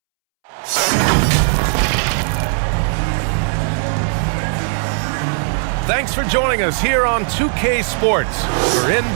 Thanks for joining us here on 2K Sports for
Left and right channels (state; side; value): silent; left; 68 dB below the other